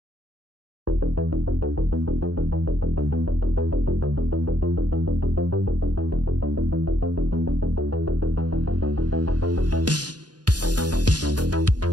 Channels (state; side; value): late; left; 0.69 ms